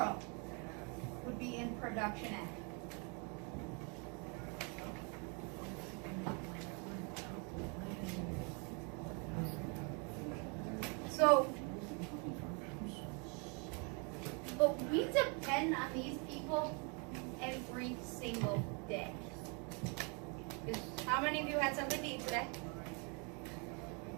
would be in production ag. So, but we depend on these people every single day. Because how many of you had something to eat today?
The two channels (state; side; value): quieter; left; 35.0 dB